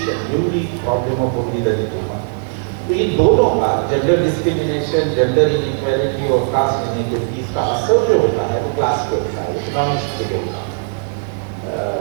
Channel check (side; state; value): left; silent; digital silence